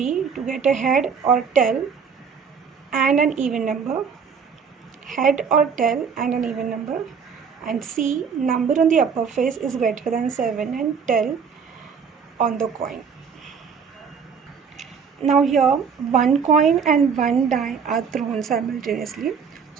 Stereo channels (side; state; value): left; quieter; 6.3 dB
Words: to get a head or tail and an even number. Head or tail and an even number. And C, number on the upper face is greater than 7 and tail on the coin. Now here one coin and one die are thrown simultaneously.